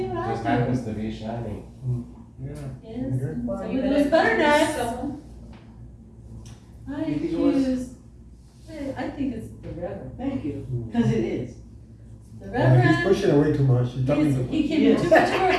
I just do. happens to be shiny. Yeah. Yes, Okay. Well, so you with better those butter choose knives. someone. I You think it was? accuse, I think it's the Reverend. Thank you, because it is. The He's Reverend, pushing away too much, he's talking too much. he came in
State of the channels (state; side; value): identical; both; correlation 1.00